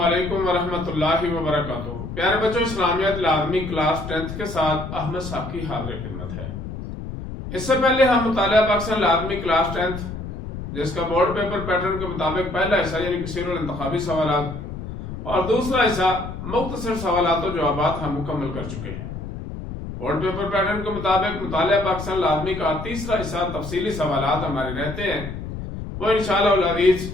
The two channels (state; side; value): noise; left; rumble, 8 dB below the sound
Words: ورحمۃ اللہ وبرکاتہ۔ پیارے بچوں، اسلامیات لازمی کلاس 10 کے ساتھ احمد ساقی حاضر خدمت ہے۔ اس سے پہلے ہم مطالعہ پاکستان لازمی کلاس 10 جس کا بورڈ پیپر پیٹرن کے مطابق پہلا حصہ یعنی کثیر الانتخابی سوالات اور دوسرا حصہ مختصر سوالات و جوابات ہم مکمل کر چکے ہیں۔ بورڈ پیپر پیٹرن کے مطابق مطالعہ پاکستان لازمی کا تیسرا حصہ تفصیلی سوالات ہمارے رہتے ہیں، وہ انشاءاللہ العزیز